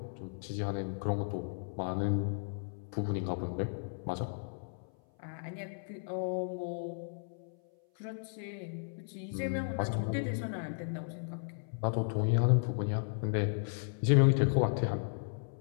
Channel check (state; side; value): silent; right; 55 dB below the other